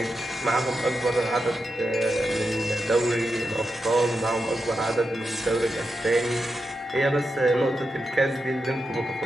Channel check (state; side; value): normal; both; correlation 0.87